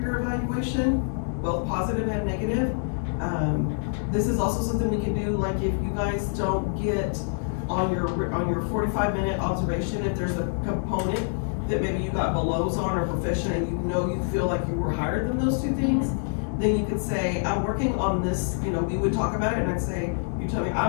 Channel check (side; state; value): right; silent; digital silence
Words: your evaluation, both positive and negative. This is also something we can do, like if you guys don't get on your 45-minute observation, if there's a component that maybe you got belows on or proficient and you know you feel like you were higher than those two things, then you could say, I'm working on this, you know, we would talk about it and I'd say, you tell me,